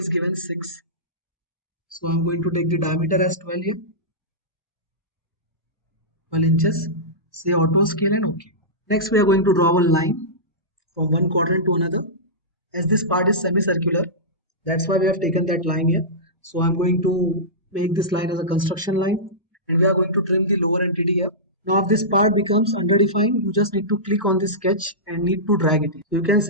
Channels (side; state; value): both; normal; correlation -0.16